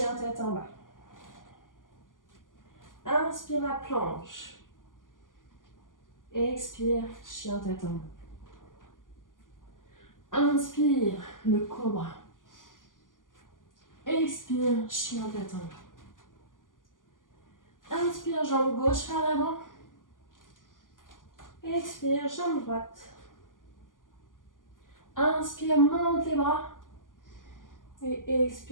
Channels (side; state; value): right; late; 0.88 ms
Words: tête en bas. Inspire la planche. Expire, chien tête en bas. Inspire, le cobra. Expire, chien tête en bas. Inspire, jambe gauche vers l'avant. Expire, jambe droite. Inspire, monte les bras. Et